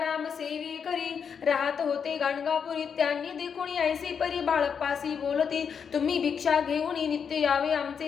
सेवी करी राहत होते गाणगापुरी त्यांनी देखुनी ऐसी परी बाळप्पासी बोलते तुम्ही भिक्षा घेऊन नित्य यावे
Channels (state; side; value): quieter; right; 6.8 dB